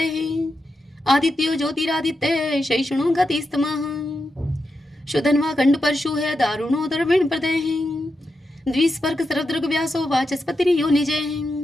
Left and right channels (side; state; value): both; normal; correlation 0.87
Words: आदित्यो ज्योतिरादित्य शैषणो गतिस्तमः शुधन्वा खंड परशु है दारुणो दर्विण प्रदय द्विस्पर्क सर्वदृग व्यासो वाचस्पति यो निजय